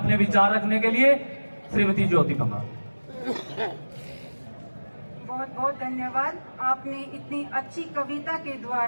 विचार रखने के लिए। श्रीमती ज्योति पंघाल। बहुत बहुत धन्यवाद। आपने इतनी अच्छी कविता के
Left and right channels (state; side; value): inverted; both; correlation -1.00